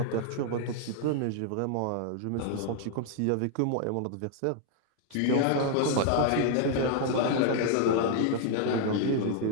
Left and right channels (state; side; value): different; both; correlation 0.00